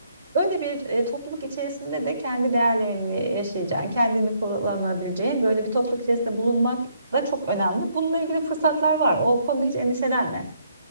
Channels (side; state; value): both; inverted; correlation -0.71